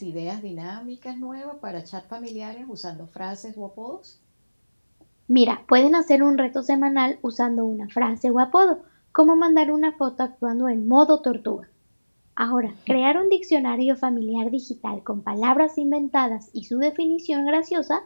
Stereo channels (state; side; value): inverted; both; correlation -1.00